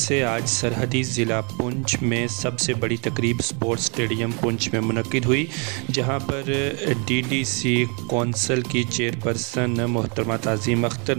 आज सरहदी ज़िला पुंछ में सबसे बड़ी तकरीब स्पोर्ट्स स्टेडियम पुंछ में मुनक्किद हुई, जहां पर डीडीसी कौंसल की चेयरपर्सन मोहतरमा ताज़ीम अख्तर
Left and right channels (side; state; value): left; quieter; 34.5 dB